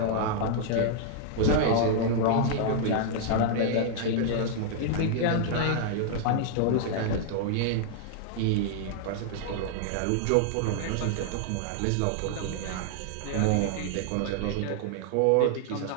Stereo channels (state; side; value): different; both; correlation -0.01